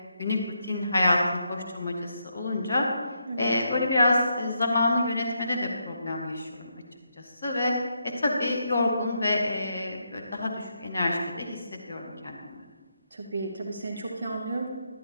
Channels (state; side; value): inverted; both; correlation -0.80